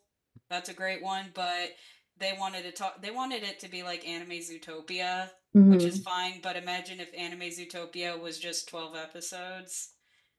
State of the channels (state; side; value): identical; both; correlation 1.00